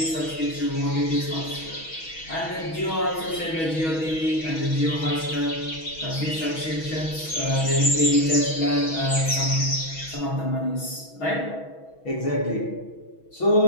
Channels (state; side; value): late; right; 6.2 ms